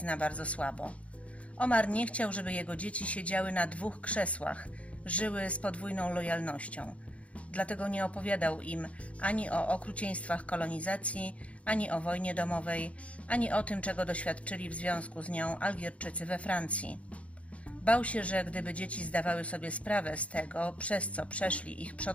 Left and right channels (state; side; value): late; right; 0.064 ms